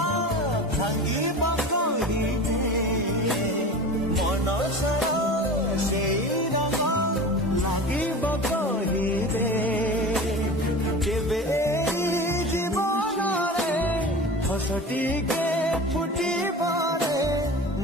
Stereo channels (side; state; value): both; normal; correlation 0.33